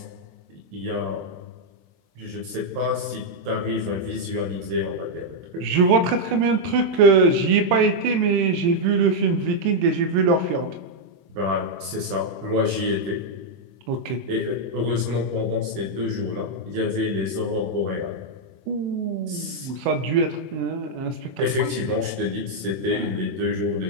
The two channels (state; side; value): late; left; 23 ms